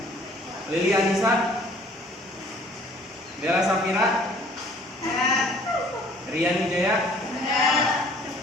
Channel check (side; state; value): both; normal; correlation 0.55